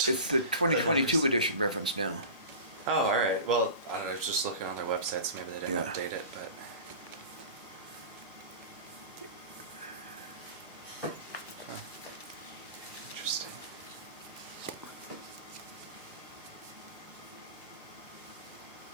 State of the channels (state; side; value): inverted; both; correlation -0.36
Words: It's the 2022 edition reference now. Oh, alright. Well, I don't know, I was just looking on their website, so maybe they didn't Yeah. update it, but. Huh. Interesting.